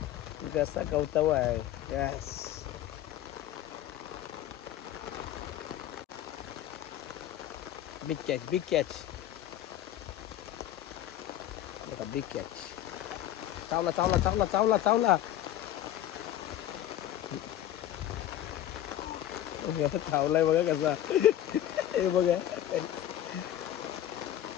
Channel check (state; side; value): quieter; right; 12.2 dB